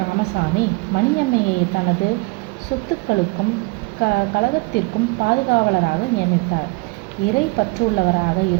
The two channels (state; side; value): quieter; left; 26.0 dB